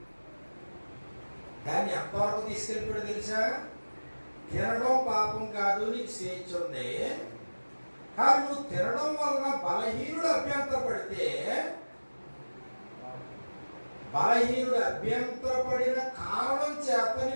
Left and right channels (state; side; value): inverted; both; correlation -1.00